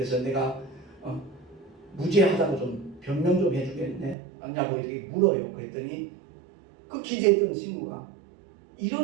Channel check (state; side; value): drops out; left; at 4.2 s